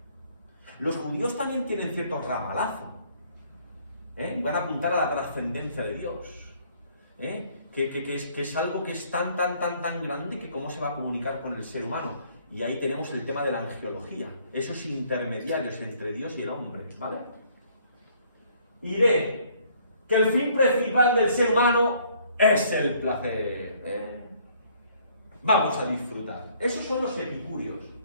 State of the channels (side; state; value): both; inverted; correlation -0.62